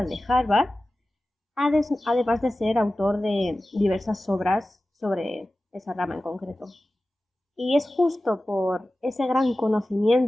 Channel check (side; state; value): both; normal; correlation 0.95